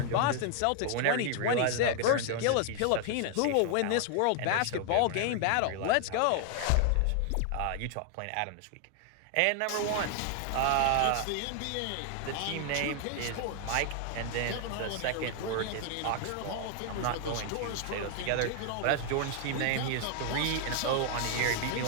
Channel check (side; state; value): both; different; correlation 0.00